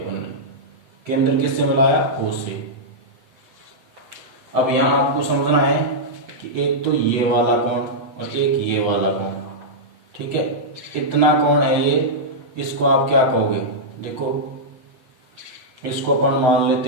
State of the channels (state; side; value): late; left; 7.9 ms